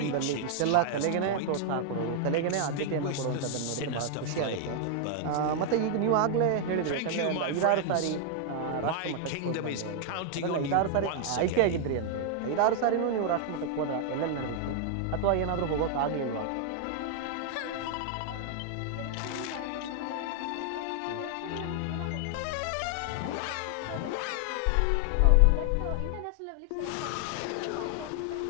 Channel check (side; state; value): both; different; correlation 0.00